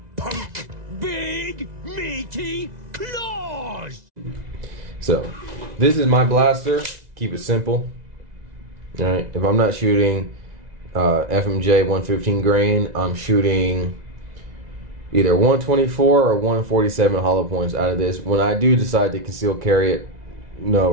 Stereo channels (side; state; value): left; late; 2.0 ms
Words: punk? Big meaty claws! So, this is my blaster. Keep it simple. Alright, if I'm not shooting FMJ 115 grain, I'm shooting either 124 or 147 hollow points out of this when I do decide to conceal carry it,